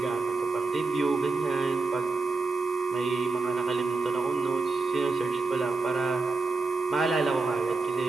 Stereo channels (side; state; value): left; quieter; 3.8 dB